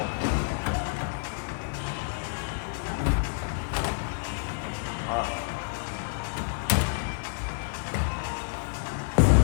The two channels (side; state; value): right; silent; digital silence